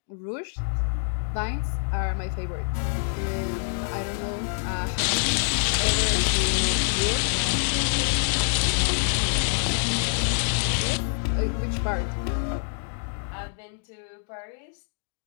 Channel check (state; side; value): silent; right; digital silence